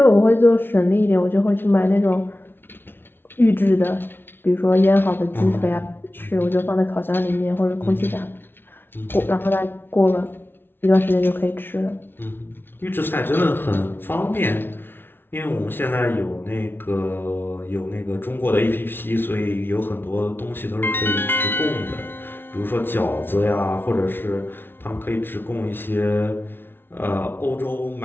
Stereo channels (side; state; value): right; late; 0.11 ms